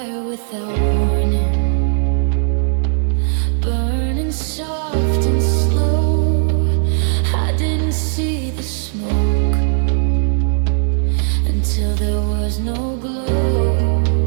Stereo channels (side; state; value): left; silent; digital silence